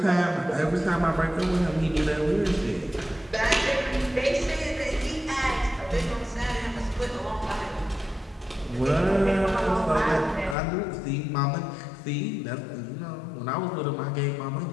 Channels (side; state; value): right; drops out; at 10.6 s